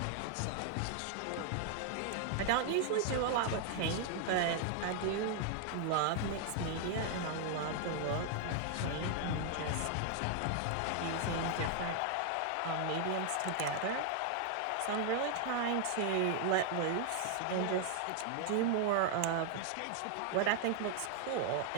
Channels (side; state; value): both; different; correlation 0.00